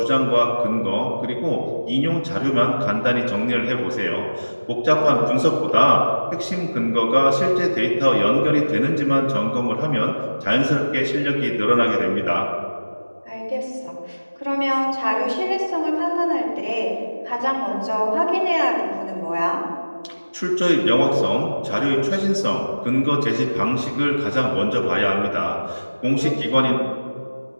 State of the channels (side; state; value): both; inverted; correlation -1.00